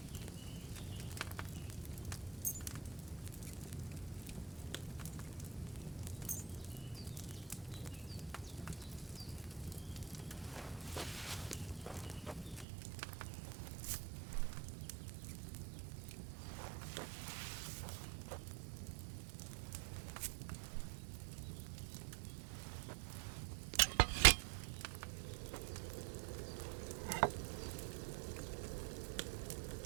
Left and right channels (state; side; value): drops out; left; at 12.7 s